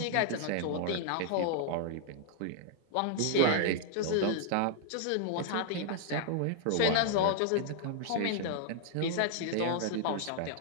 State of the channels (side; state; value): both; different; correlation -0.01